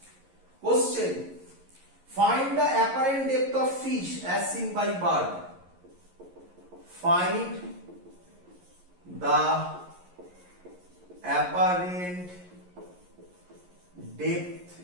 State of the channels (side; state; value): left; late; 11 ms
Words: Question, find the apparent depth of fish as seen by bird. Find the apparent depth